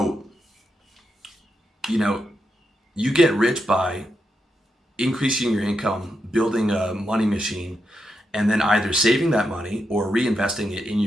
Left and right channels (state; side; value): normal; both; correlation 0.84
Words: you get rich by increasing your income, building a money machine, and then either saving that money or reinvesting it in